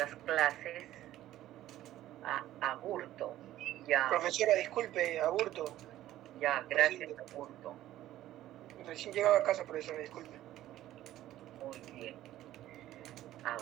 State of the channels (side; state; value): left; quieter; 13.9 dB